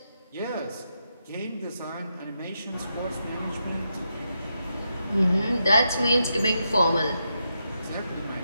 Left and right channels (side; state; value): both; inverted; correlation -0.84